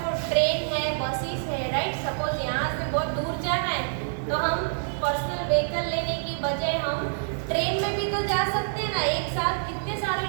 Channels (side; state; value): left; silent; digital silence